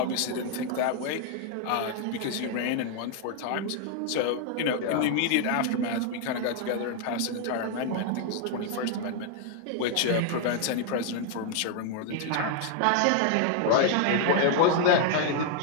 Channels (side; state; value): both; different; correlation 0.00